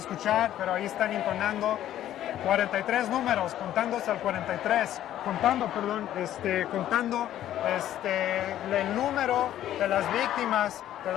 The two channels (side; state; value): right; quieter; 12.2 dB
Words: pero ahí están intonando 43 números, contándose al 43, contando el número de las víctimas de